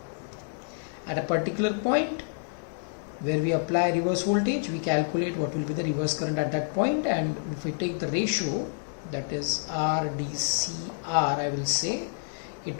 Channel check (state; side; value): silent; right; digital silence